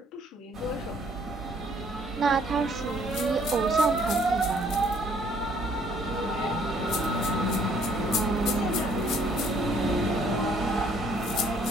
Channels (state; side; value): normal; both; correlation 0.62